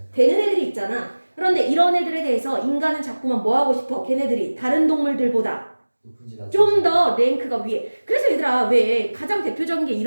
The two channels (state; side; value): inverted; both; correlation -1.00